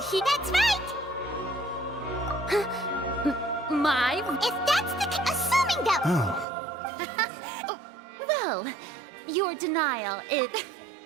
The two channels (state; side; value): drops out; left; at 6.5 s